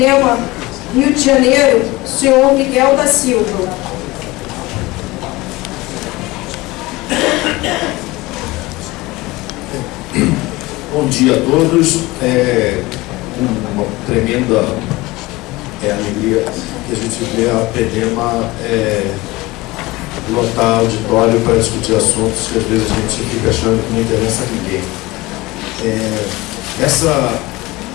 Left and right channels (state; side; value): quieter; right; 20.8 dB